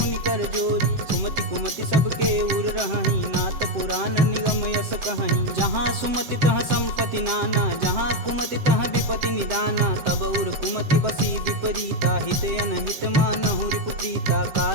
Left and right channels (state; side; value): late; left; 7.7 ms